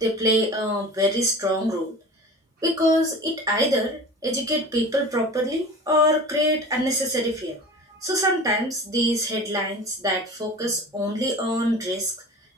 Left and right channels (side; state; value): both; normal; correlation 0.37